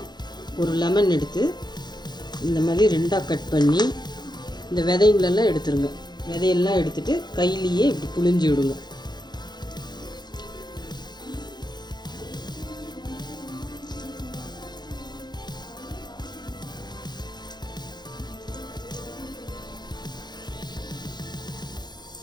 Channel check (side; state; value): right; late; 0.21 ms